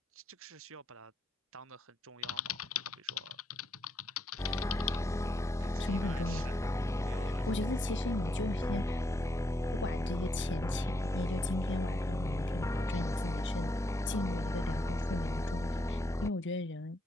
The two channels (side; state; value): both; normal; correlation 0.79